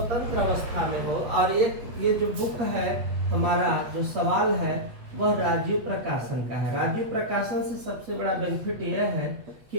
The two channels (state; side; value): late; left; 8.4 ms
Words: अवस्था में हो और ये जो बुक है हमारा, जो सवाल है वह राजीव प्रकाशन का है। राजीव प्रकाशन से सबसे बड़ा बेनिफिट यह है